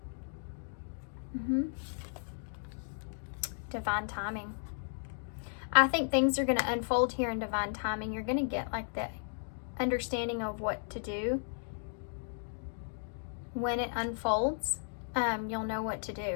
Divine timing. I think things are going to unfold here in divine timing. You're going to get like the understanding of what to do. When it unfolds, you'll know what to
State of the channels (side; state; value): right; silent; digital silence